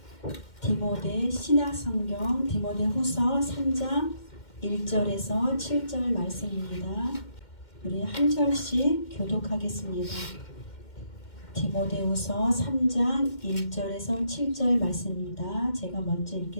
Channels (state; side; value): late; right; 2.1 ms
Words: 디모데 신약성경 디모데후서 3장 1절에서 7절 말씀입니다. 우리 한 절씩 교독하겠습니다. 디모데후서 3장 1절에서 7절 말씀입니다. 제가 먼저